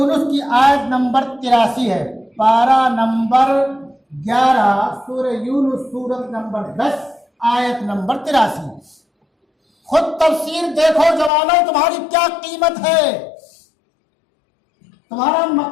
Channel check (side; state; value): right; drops out; at 11.3 s